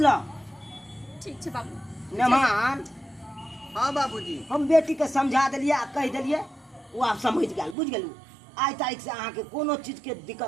ठीक छै बाबू। मेहमान हाँ बाबूजी हम बेटी के समझा देलिए आ कह देलिए वो आप समझ गेल बुझ गेलू। आइ तारीख से अहाँ के कोनो चीज के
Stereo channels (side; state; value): left; drops out; at 7.8 s